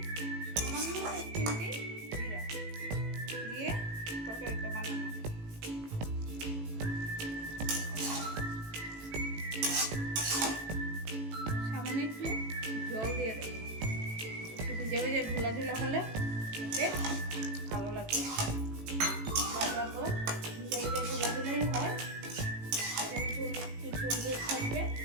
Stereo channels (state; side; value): late; left; 18 ms